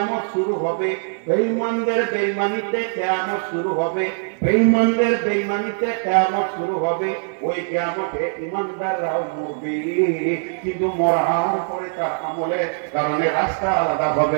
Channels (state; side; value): silent; left; 57 dB below the other